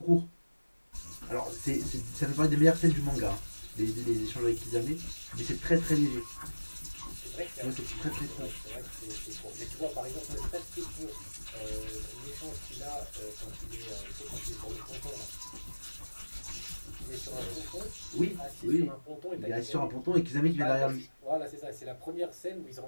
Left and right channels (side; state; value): both; inverted; correlation -1.00